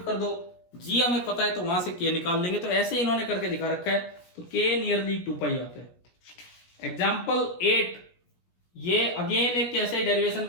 कर दो, जी हमें पता है तो वहां से के निकाल लेंगे। तो ऐसे इन्होंने करके दिखा रखा है, तो के नियरली 2 पाई आता है। एग्जाम्पल 8, ये अगेन एक कैसे डेरिवेशन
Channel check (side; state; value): right; late; 16 ms